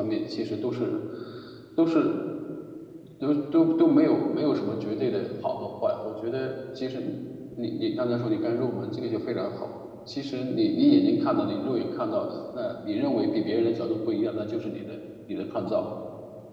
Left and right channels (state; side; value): identical; both; correlation 1.00